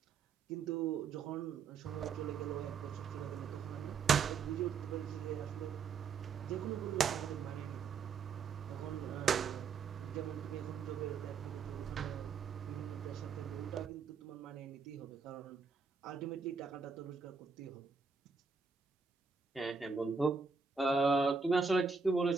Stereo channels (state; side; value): quieter; left; 5.2 dB